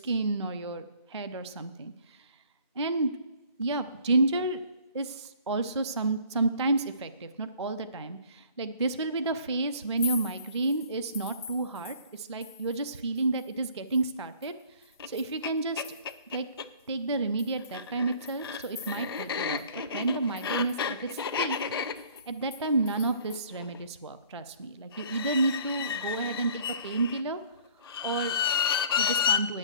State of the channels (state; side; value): inverted; both; correlation -0.54